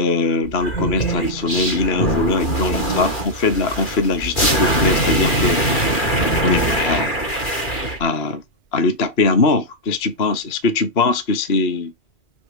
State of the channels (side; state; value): right; late; 2.4 ms